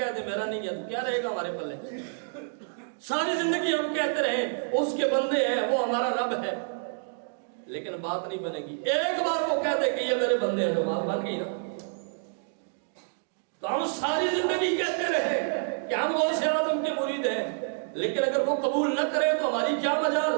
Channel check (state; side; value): silent; left; digital silence